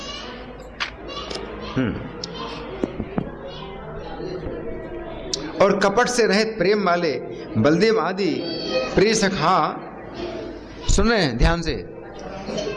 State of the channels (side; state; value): both; identical; correlation 1.00